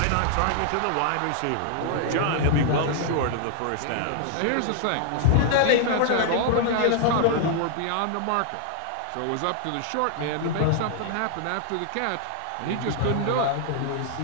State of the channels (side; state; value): both; different; correlation 0.00